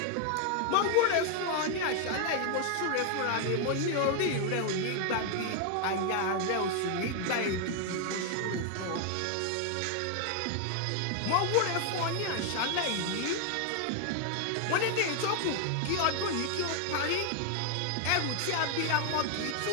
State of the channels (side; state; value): both; different; correlation 0.00